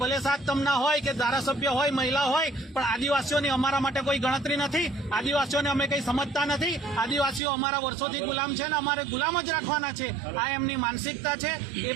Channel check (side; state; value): left; drops out; at 7.4 s